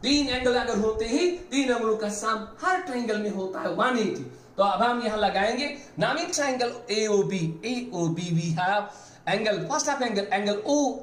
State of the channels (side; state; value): both; identical; correlation 1.00